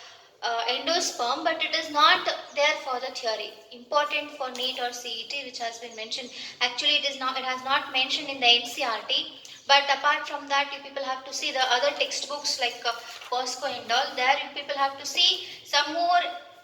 endosperm, but it is not there for the theory. Important for NEET or CET, which has been mentioned. Actually, it has not mentioned in the NCERT. But apart from that, you people have to see the other textbooks like POSCO and all. There you people have to see some more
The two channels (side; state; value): both; identical; correlation 1.00